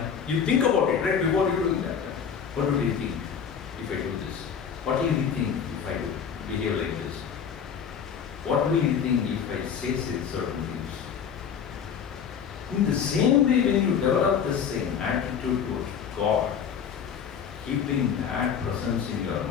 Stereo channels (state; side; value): quieter; right; 7.4 dB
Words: You think about it, right? Before you doing that. What would he think if I do this? What will he think if I do behave like this? What will he think if I say certain things? In the same way, when you develop the same attitude towards God, keeping that presence in your